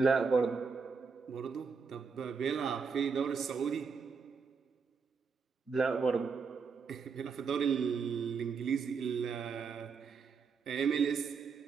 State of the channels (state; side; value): quieter; left; 5.5 dB